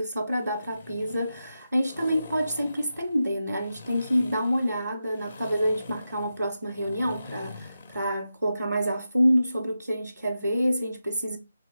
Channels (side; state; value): both; inverted; correlation -0.89